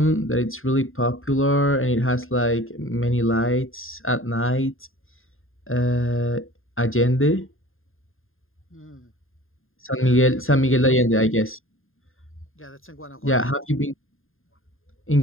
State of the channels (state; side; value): late; right; 0.60 ms